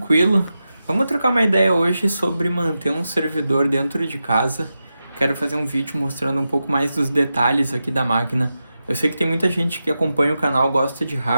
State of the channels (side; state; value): both; inverted; correlation -0.91